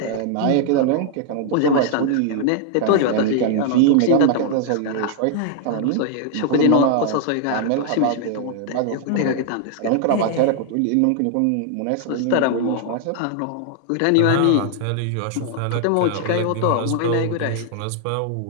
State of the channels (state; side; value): different; both; correlation 0.00